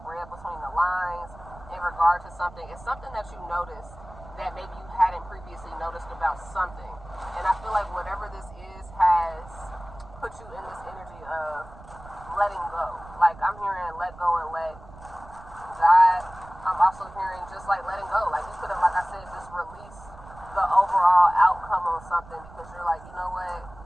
read between the lines in regard to something. It's something that you noticed that maybe you hadn't previously noticed about something. And I feel like whatever this is has put you in this energy of letting go. Like I'm hearing let go and let God. I'm also hearing just like letting go. Like you could have, like I said, just release the overall outcome on something because you're like, you know what,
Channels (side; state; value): right; noise; rumble, 19 dB below the sound